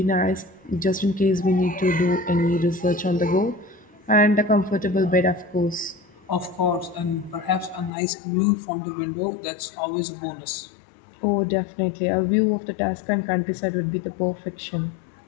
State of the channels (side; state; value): right; drops out; at 7.9 s